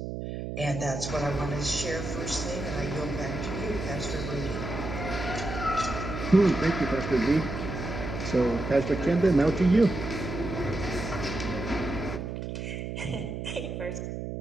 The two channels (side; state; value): right; noise; hum, 6 dB below the sound